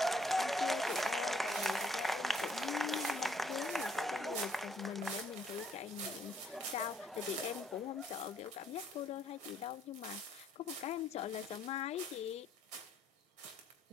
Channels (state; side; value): normal; both; correlation 0.67